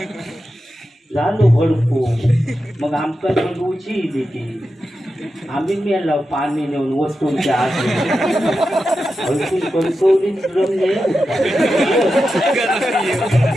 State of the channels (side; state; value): both; normal; correlation 0.90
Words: झालो भडको. मग आमका भडवूची देते. आम्ही मेला पाणी नेऊन वस्तूंच्या आत हलकून कणकवलीच रमले